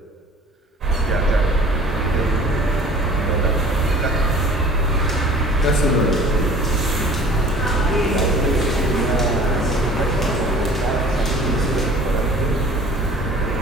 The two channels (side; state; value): both; normal; correlation 0.48